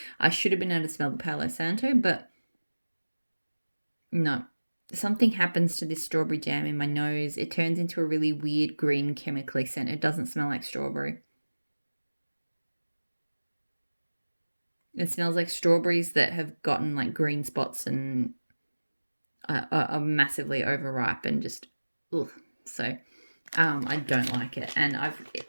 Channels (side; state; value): both; inverted; correlation -1.00